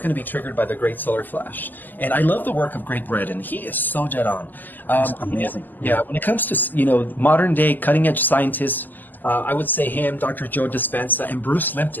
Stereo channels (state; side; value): late; right; 0.086 ms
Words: going to be triggered by the Great Solar Flash. And I love the work of Greg Braden. He is so dead on. Amazing. Yeah, when it comes to, modern day cutting edge scientists, I would say him, Dr. Joe Dispenza, and Bruce